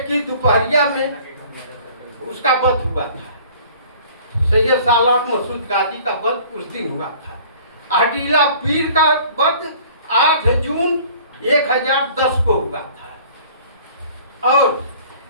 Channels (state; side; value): inverted; both; correlation -0.50